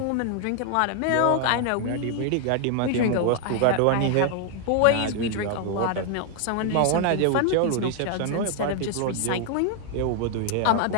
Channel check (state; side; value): different; both; correlation 0.00